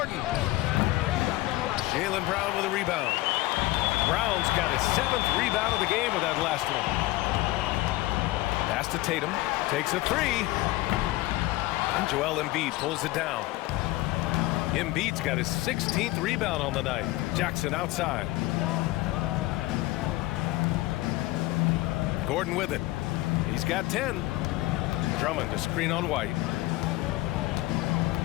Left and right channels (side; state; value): right; quieter; 18.6 dB